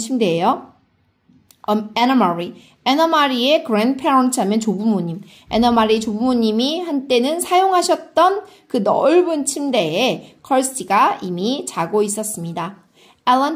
Anna Marie의 grandparents 하면 조부모님. Anna Marie의 조부모님이 한때는 사용하셨던 그 넓은 침대에 Kirsty가 이미 자고 있었습니다.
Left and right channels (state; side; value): identical; both; correlation 1.00